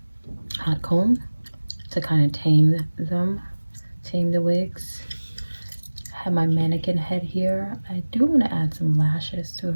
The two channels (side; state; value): both; inverted; correlation -1.00